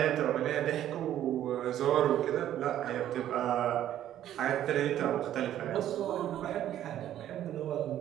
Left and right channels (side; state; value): left; quieter; 11.7 dB